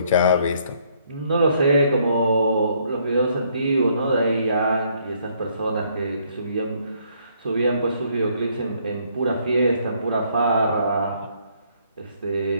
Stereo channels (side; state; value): both; inverted; correlation -0.67